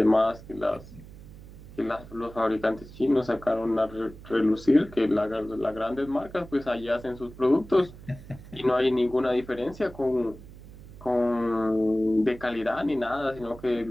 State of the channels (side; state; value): right; noise; hum, 17 dB below the sound